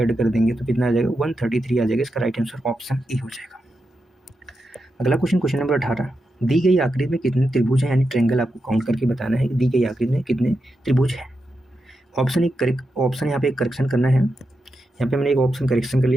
कर देंगे तो कितना आ जाएगा 133 आ जाएगा। इसका राइट आंसर ऑप्शन ए हो जाएगा। अगला क्वेश्चन नंबर 18, दी गई आकृति में कितने त्रिभुज हैं, यानी ट्रायंगल आपको काउंट करके बताना है कि दी गई आकृति में कितने त्रिभुज हैं। ऑप्शन यहाँ पे एक करेक्शन करना है, यहाँ पे मैंने एक ऑप्शन करेक्शन कर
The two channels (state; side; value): normal; both; correlation 0.87